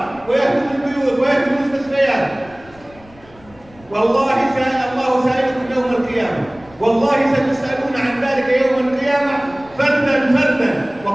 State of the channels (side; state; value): left; noise; rumble, 25 dB below the sound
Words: ويهدمون البيوت ويهدمون المستشفيات. والله الله سائلكم يوم القيامة، والله ستسألون عن ذلك يوم القيامة فردا فردا،